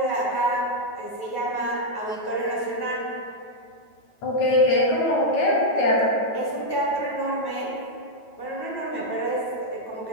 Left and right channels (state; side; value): late; right; 9.2 ms